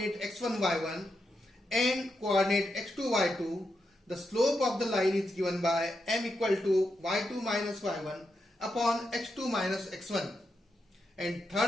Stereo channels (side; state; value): both; normal; correlation 0.85